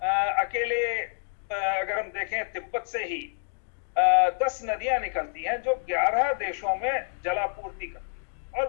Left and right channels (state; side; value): silent; right; 59 dB below the other